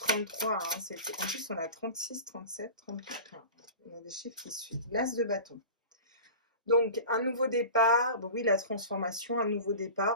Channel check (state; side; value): inverted; both; correlation -0.35